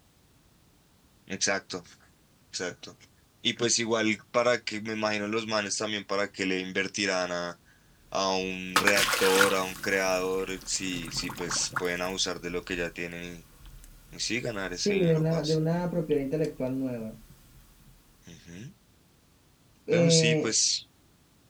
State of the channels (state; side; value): identical; both; correlation 1.00